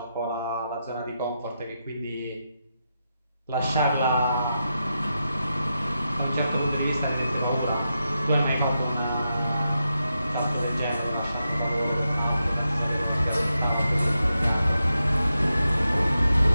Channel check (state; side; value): inverted; both; correlation -0.87